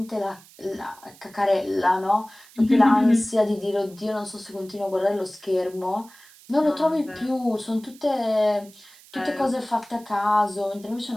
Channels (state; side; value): noise; right; hiss, 24 dB below the sound